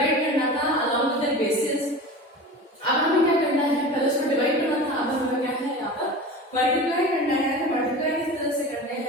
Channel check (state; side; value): normal; both; correlation 0.33